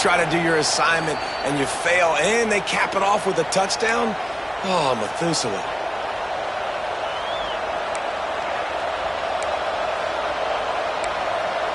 to do your assignment, and you fail, and they cap it off with a touchdown? Oh, Methuselah.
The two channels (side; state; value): both; identical; correlation 1.00